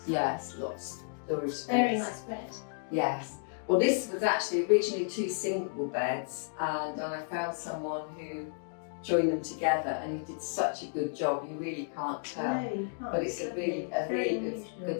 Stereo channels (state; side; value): silent; right; digital silence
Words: Yes, lots of storage space. Very nice bed. Yes. Well, this was actually originally 2 single beds, and I found someone who joined them together, and he did such a good job. You really can't tell, No, you can't. but it's a really